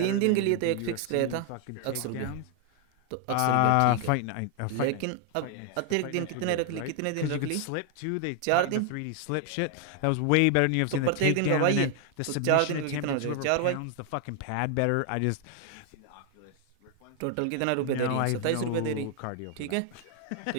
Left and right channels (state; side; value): different; both; correlation 0.00